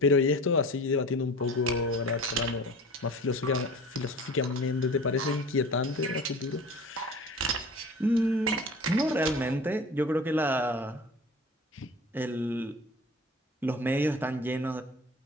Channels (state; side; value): normal; both; correlation 0.39